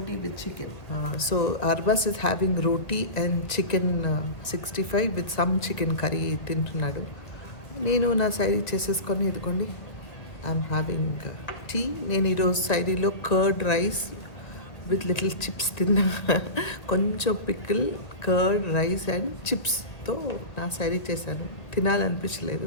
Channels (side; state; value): right; late; 1.7 ms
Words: with chicken. So Arbaz is having roti and chicken 65 with some chicken curry తింటున్నాడు. నేను నా సైడ్ చేసేసుకొని ఇదిగోండి ఐఎమ్ హ్యావింగ్ టీ. నేను ఈరోజు సైడీలో curd rice with little chips తిన్నా. కొంచెం పికిల్, కర్డ్ రైస్ అండ్ చిప్స్తో నా సైడీ చేశాను. తినాలనిపించలేదు.